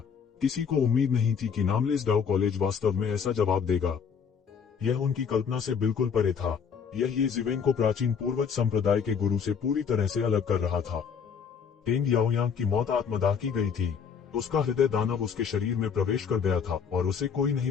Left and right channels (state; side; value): quieter; right; 6.7 dB